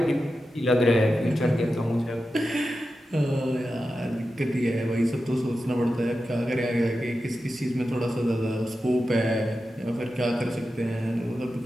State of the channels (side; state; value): both; normal; correlation 0.91